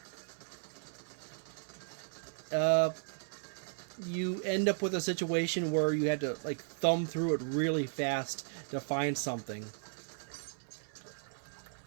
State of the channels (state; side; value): silent; left; 54 dB below the other